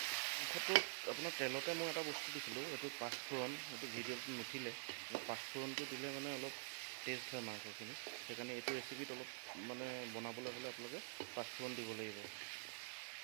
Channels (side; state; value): left; silent; digital silence